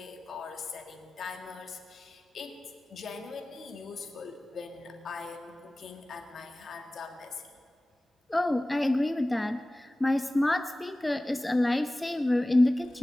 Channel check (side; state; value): both; normal; correlation 0.98